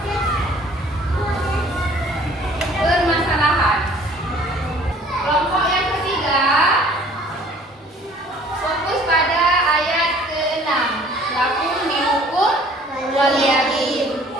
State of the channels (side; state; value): both; normal; correlation 0.53